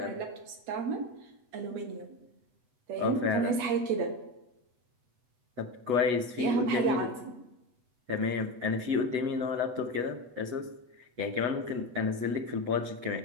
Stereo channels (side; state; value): left; late; 8.1 ms